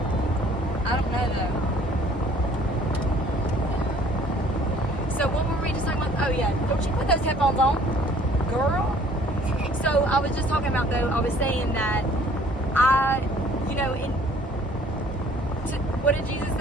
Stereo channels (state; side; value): normal; both; correlation 0.56